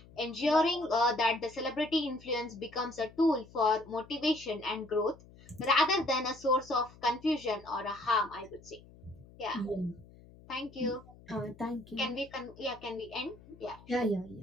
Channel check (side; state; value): left; noise; hum, 22 dB below the sound